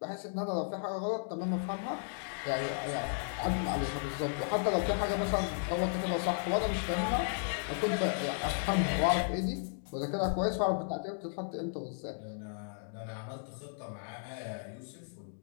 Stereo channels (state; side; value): silent; right; digital silence